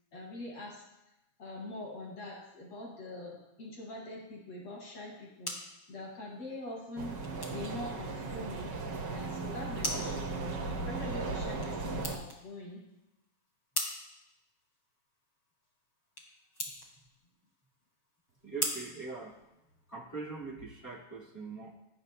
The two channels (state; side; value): late; right; 7.3 ms